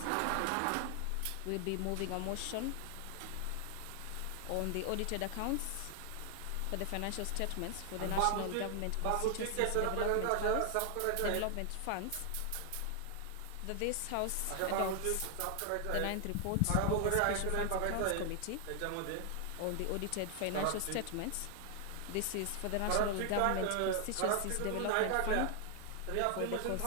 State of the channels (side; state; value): both; different; correlation 0.00